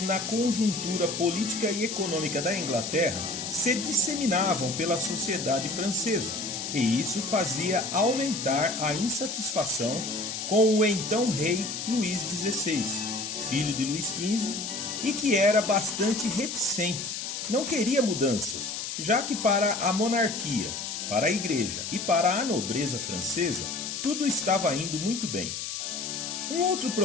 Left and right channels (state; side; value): noise; left; hiss, 5 dB below the sound